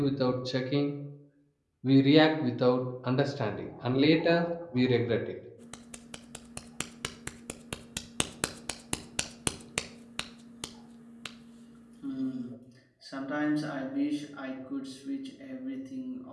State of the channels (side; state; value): both; identical; correlation 1.00